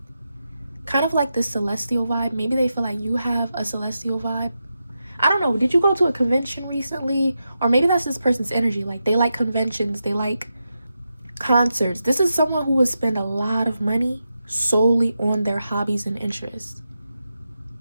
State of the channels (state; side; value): inverted; both; correlation -0.88